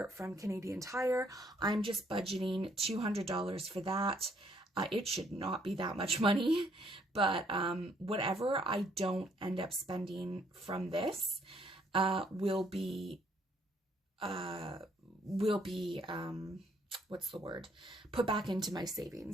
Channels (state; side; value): normal; both; correlation 0.67